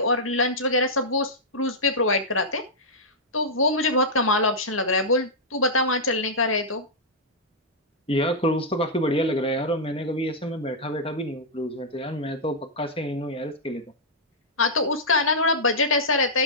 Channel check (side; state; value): both; normal; correlation -0.10